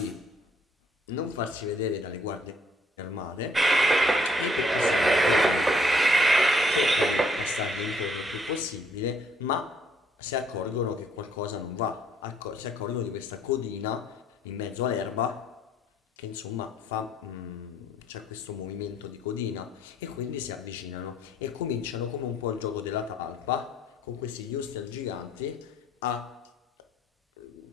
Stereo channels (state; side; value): normal; both; correlation 0.64